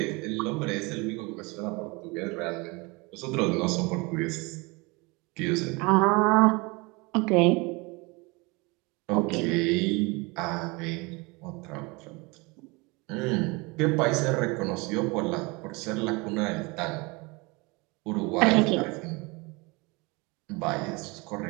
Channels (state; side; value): quieter; left; 26.6 dB